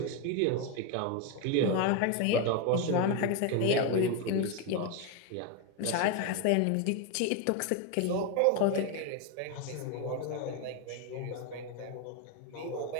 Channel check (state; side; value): different; both; correlation 0.02